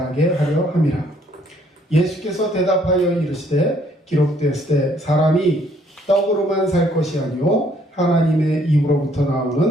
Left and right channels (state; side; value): normal; both; correlation 0.65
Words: 하려 함이라. 예수께서 대답하여 이르시되 기록되었을 때 사람이 떡으로만 살 것이 아니요 하나님의 입으로부터